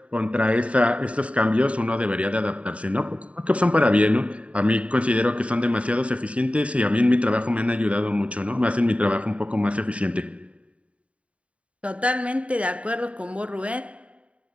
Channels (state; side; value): late; left; 0.063 ms